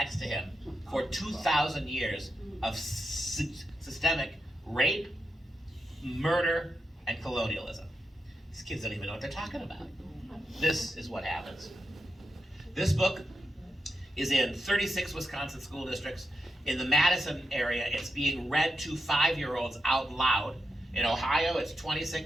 to him for 2,000 years of systemic rape, murder, and colonialism. These kids don't even know what they're talking about. This is what happens. This book is in 36 Wisconsin school districts. In the Madison area, it's being read to 5-year-olds out loud. In Ohio, it's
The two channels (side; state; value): both; normal; correlation 0.86